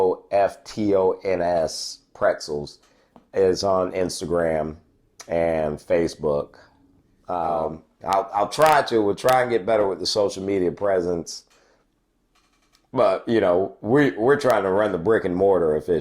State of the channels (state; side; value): identical; both; correlation 1.00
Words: Pretzels is on Instagram and Facebook. We'll try and get better with the social media presence. But, you know, we're trying to run the brick and mortar